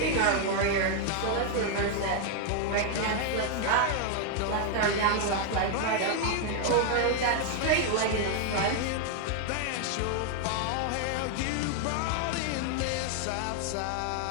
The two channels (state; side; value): different; both; correlation 0.00